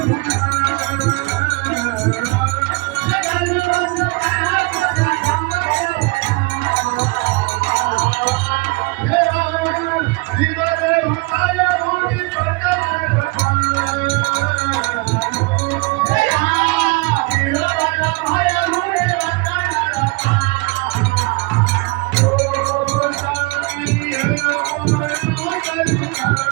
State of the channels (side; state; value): left; quieter; 27.0 dB